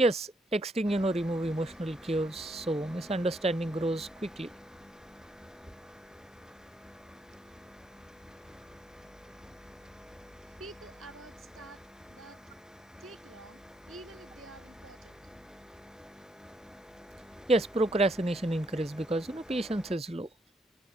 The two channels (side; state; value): both; normal; correlation 0.74